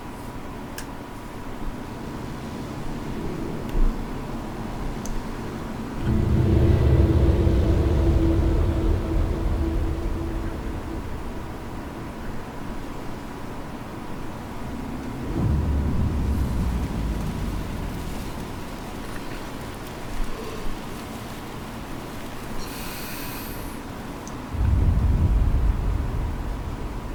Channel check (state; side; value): identical; both; correlation 1.00